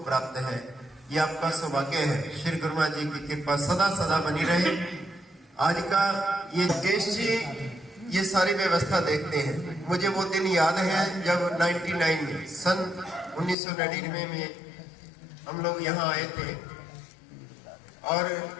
प्राप्त है। ये आपका सौभाग्य है। श्री गुरु महाराज जी की कृपा सदा सदा बनी रहे। आज का ये केश जी ये सारी व्यवस्था देखते हैं। मुझे वो दिन याद है जब 99 में, सन 1999 में हम लोग यहाँ आए थे और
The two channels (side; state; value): right; drops out; at 13.6 s